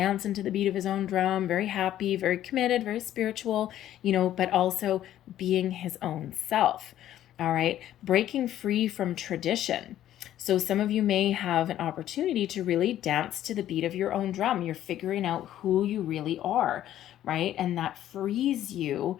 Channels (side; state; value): right; quieter; 12.2 dB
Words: to the beat of his own drum, very happy, very committed, very spiritual, you know, but also being his own self. All right, breaking free from tradition. So some of you may have an opportunity to really dance to the beat of your own drum. You're figuring out who you really are, right? And that frees you,